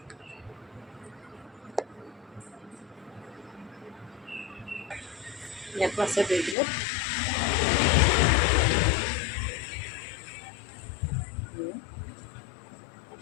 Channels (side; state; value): right; drops out; at 6.6 s